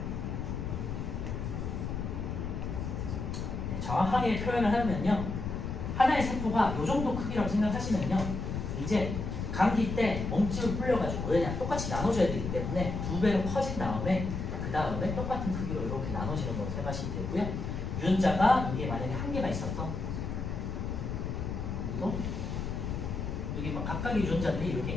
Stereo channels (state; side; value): noise; left; rumble, 4 dB below the sound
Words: 정확하게 표현을 하면요. 하나의 세포가 이 정도 크기라고 생각하시면요. 이제 감기 때 몸집을 불려가지고 왜냐 똑같이 나눠줘야 되기 때문에 2배로 커진 다음에 그 다음에 똑같은 크기로 이렇게 나눠지는 걸로 생각하시면 되고요. 유전자가 이게 만약에 한 개가 있었어. 그리고 여기 막 각각의 유전자들이 이렇게